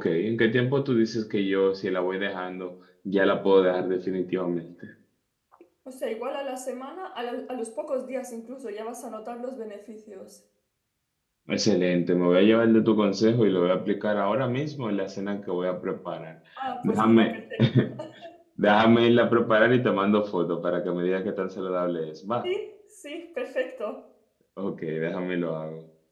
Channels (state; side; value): identical; both; correlation 1.00